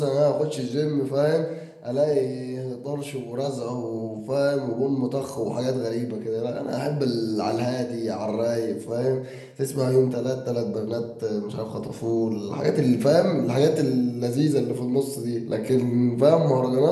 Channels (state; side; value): identical; both; correlation 1.00